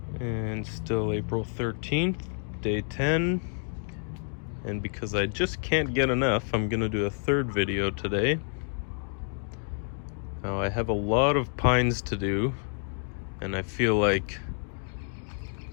And still April 13th, day 10. And because I just can't get enough, I'm gonna do a third video today. Now I have a lot of pines to do, and I feel like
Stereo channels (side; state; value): right; silent; 59 dB below the other